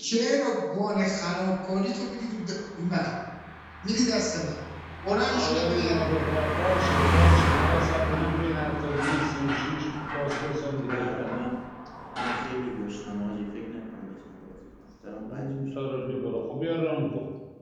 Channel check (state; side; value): identical; both; correlation 1.00